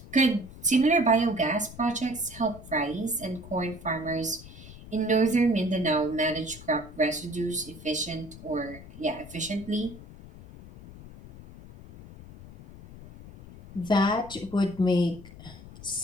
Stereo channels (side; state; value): left; noise; rumble, 17 dB below the sound